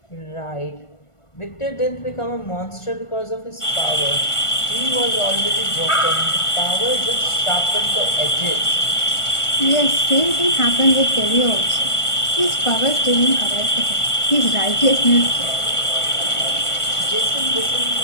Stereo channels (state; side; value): late; right; 1.5 ms